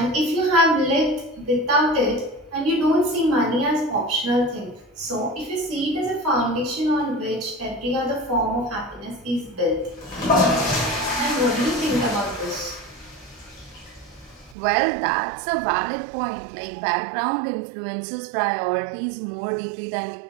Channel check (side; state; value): left; drops out; at 14.6 s